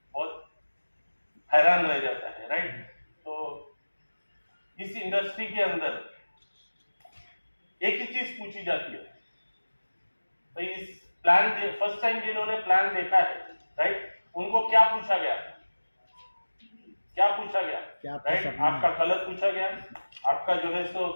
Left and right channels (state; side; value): inverted; both; correlation -1.00